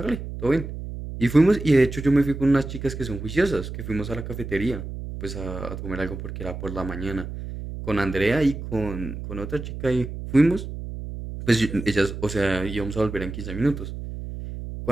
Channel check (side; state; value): right; noise; hum, 8 dB below the sound